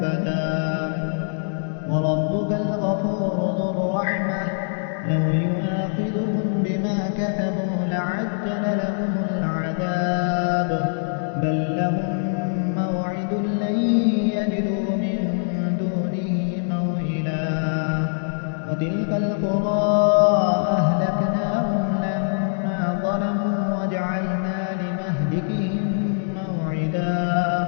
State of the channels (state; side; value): silent; right; digital silence